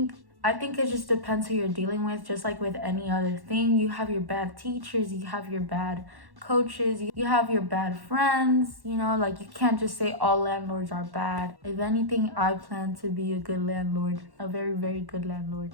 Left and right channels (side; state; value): left; late; 1.1 ms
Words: it just depends who you're dealing with. Just like with any other thing, you have your bad teachers, you have your bad coaches, you have your bad friends, like you can't just say all landlords are bad. If anything, I plan to be a good landlord, a very, very good landlord.